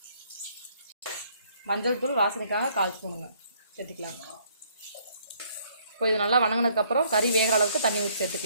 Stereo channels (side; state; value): both; inverted; correlation -0.65